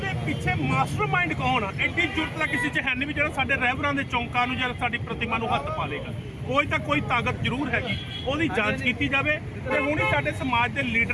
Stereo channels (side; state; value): both; identical; correlation 1.00